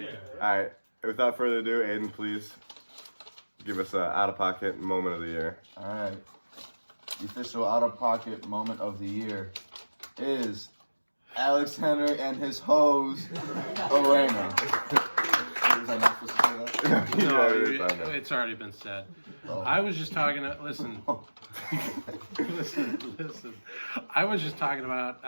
All right. Without further ado, Aiden, please give us an out-of-pocket moment of the year. All right. The official out-of-pocket moment of the year is Alex Henry and his hose, Elena. Was I not supposed to say that? No, Yeah, it is, I know. it's already been said. Oh. I was just talking to, listen. listen. I was just talking about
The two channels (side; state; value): both; inverted; correlation -1.00